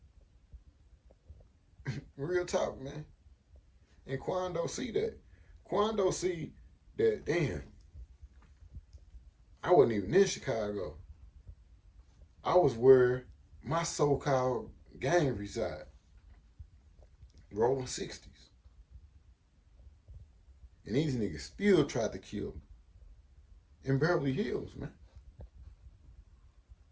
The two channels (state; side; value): identical; both; correlation 1.00